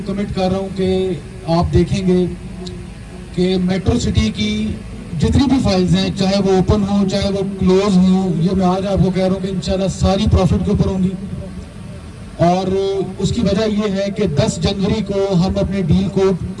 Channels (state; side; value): identical; both; correlation 1.00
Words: کمٹ کر رہا ہوں کہ آپ دیکھیں گے کہ میٹرو سٹی کی جتنی بھی فائلز ہیں، چاہے وہ اوپن ہوں چاہے وہ کلوز ہوں، یہ میں آج آپ کو کہہ رہا ہوں کہ انشاءاللہ ساری پروفٹ کے اوپر ہوں گی. اور اس کی وجہ یہ ہے کہ 10 جنوری کو ہم اپنے ڈیل کو